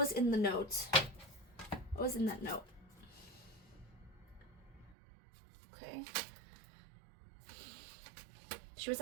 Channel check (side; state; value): left; drops out; at 5.0 s